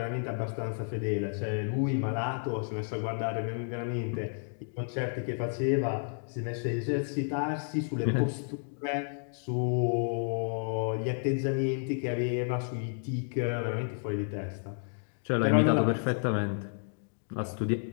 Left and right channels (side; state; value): right; silent; digital silence